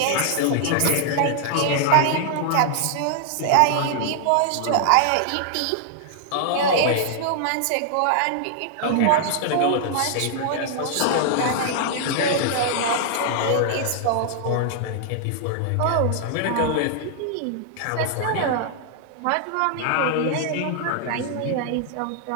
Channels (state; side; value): different; both; correlation -0.01